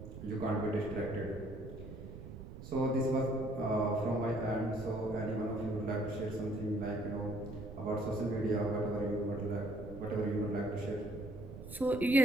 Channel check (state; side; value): noise; right; rumble, 12 dB below the sound